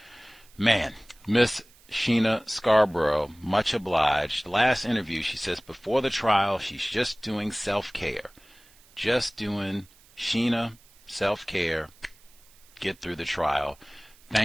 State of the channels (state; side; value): noise; right; hiss, 27 dB below the sound